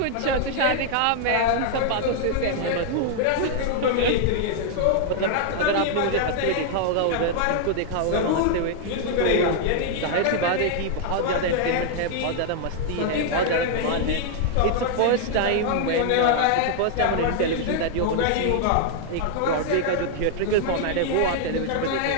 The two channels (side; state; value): both; different; correlation 0.00